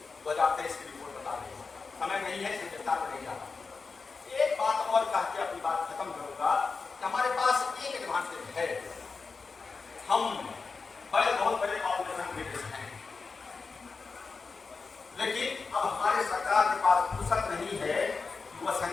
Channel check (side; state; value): right; quieter; 4.5 dB